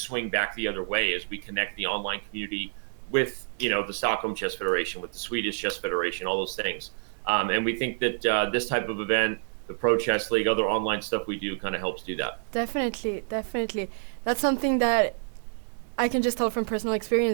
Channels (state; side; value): silent; left; digital silence